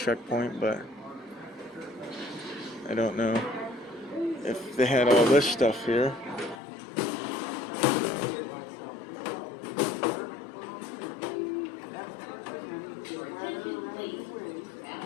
but I don't know if they had all this stuff here. Attention please.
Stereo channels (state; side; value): drops out; right; at 6.6 s